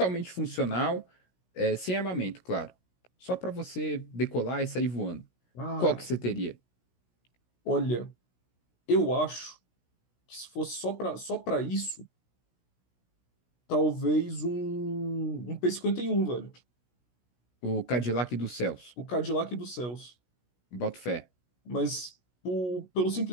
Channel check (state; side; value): late; right; 16 ms